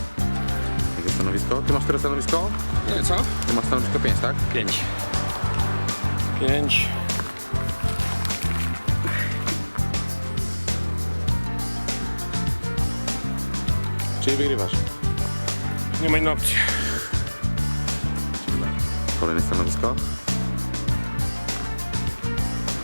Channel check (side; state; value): both; inverted; correlation -1.00